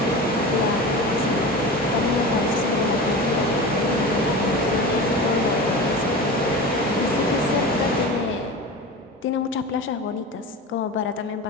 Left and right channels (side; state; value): both; normal; correlation 0.30